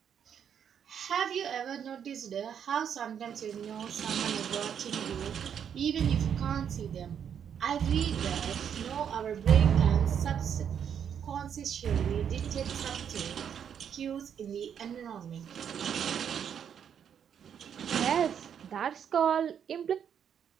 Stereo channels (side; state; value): left; quieter; 8.3 dB